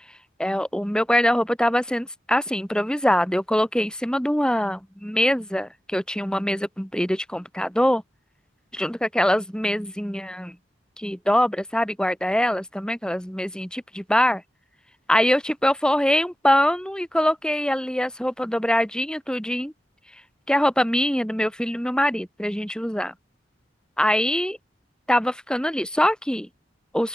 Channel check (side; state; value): both; normal; correlation 0.94